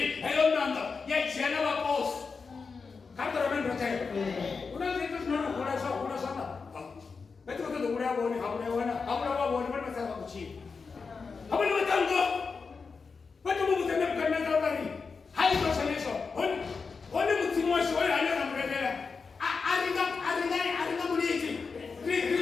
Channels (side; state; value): right; quieter; 4.9 dB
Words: nando. Ya ichiana wa pos. Kata ramendo te. Una zitu sinano kuna sana. Betu kote do urea woni, habuna wana. Habuna wa woni, wana masama kuchini. Habuna watango. Betu mungu tene mkana zawari. Hai toshanisho. Honi mtimwashi, honi hanyana mredela. Aringa muliti.